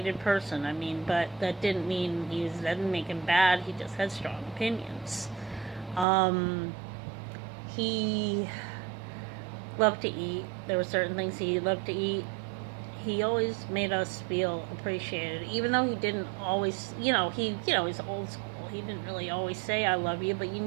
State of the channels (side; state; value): left; drops out; at 6.1 s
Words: person. But that didn't mean that didn't make him bad. He just had strong opinions. He loved to eat. There were certain things he loved to eat. He always made us feel appreciated, even though he didn't always, he's old school. He didn't really always say "I love you," but you